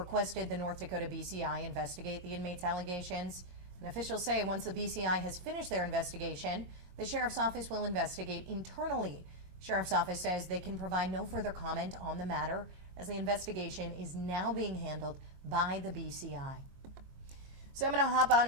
the North Dakota BCI investigate the inmate's allegations. And officials say once the BCI has finished their investigation, the Sheriff's Office will investigate internally. Sheriff's Office says they can provide no further comment on the matter as the investigation is now being handled by the BCI. So I'm going to hop on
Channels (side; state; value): left; late; 22 ms